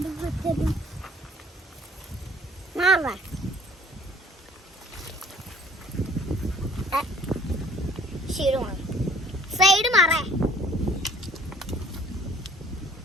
മാറാ ശരിയാണ്. സൈഡ് മാറേ.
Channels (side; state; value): both; normal; correlation 0.54